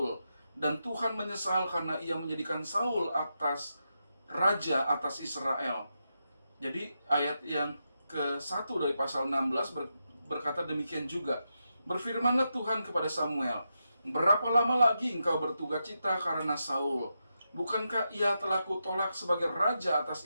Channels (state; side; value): inverted; both; correlation -0.86